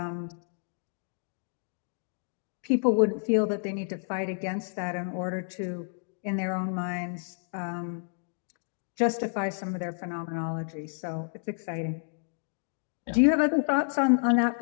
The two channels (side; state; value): right; silent; 58 dB below the other